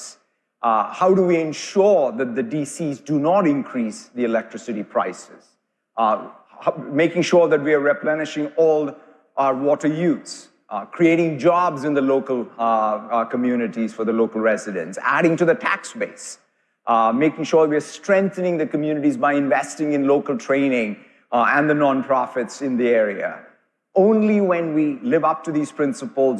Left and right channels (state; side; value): identical; both; correlation 1.00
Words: How do we ensure that the DCs do not increase the electricity prices? Making sure that we are replenishing all our water use, creating jobs in the local communities for the local residents, adding to the tax base, making sure we are strengthening the communities by investing in local training and the nonprofits in the area. Only when we live up to these